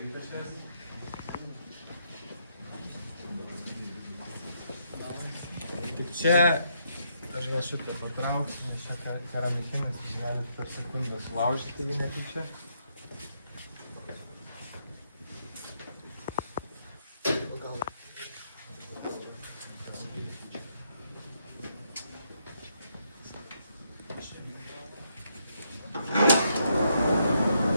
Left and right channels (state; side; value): inverted; both; correlation -0.76